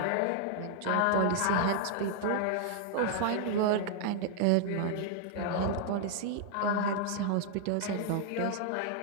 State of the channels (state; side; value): different; both; correlation 0.00